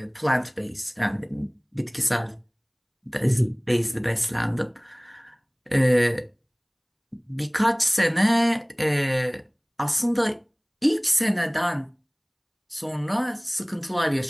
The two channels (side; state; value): both; identical; correlation 1.00